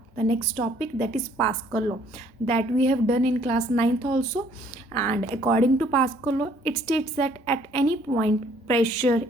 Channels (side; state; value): both; normal; correlation 0.61